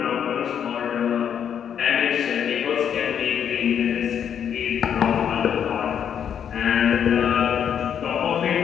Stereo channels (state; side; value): quieter; right; 8.5 dB